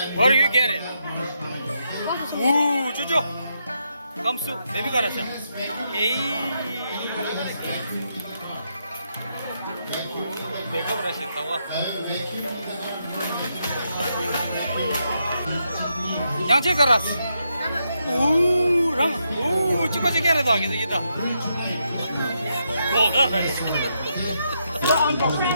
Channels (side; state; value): both; inverted; correlation -0.81